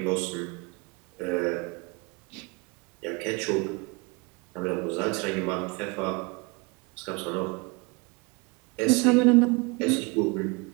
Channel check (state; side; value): quieter; left; 27.9 dB